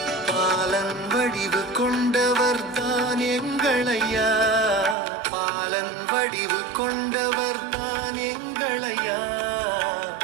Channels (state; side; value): drops out; left; at 5.0 s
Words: பாலன் வடிவு கொண்டவர் தான் எங்கள் ஐயா, பாலன் வடிவு கொண்டவர் தான் எங்கள் ஐயா.